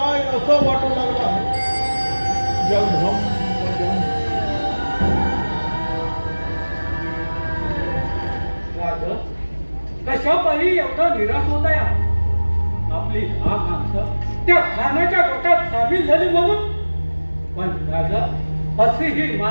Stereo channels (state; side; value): inverted; both; correlation -1.00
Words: असं वाटू लागलं आहे जगधम कशा पायी एवढा निराश होता या आपली हा माणसं त्या खानाच्या गोटात सामील झाली म्हणून पण राजा अशी ही